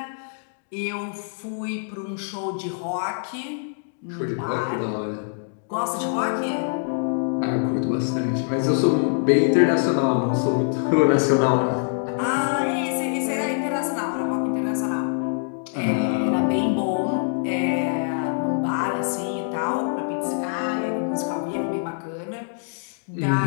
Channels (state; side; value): silent; right; digital silence